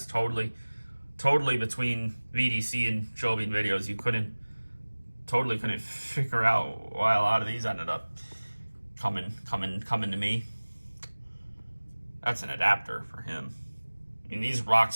Totally between VDC and Joe Bean videos, you totally couldn't figure out why a lot of these ended up coming to me. That's an adapter for him. I mean, these Rock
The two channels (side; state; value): both; inverted; correlation -1.00